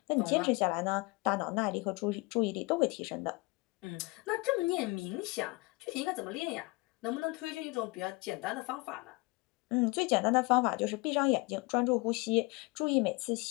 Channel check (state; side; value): quieter; right; 25.6 dB